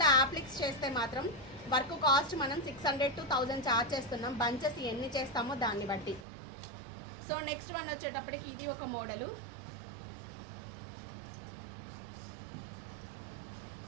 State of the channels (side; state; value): left; drops out; at 6.2 s